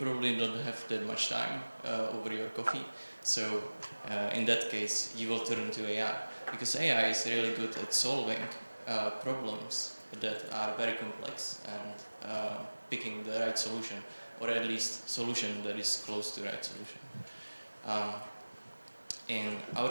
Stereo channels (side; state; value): both; inverted; correlation -1.00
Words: don't have that much time over your coffee, so in that case you will turn to AI, because AI is really good at solving problems that are very complex and picking the right solution, or at least solution that is close to the right solution. In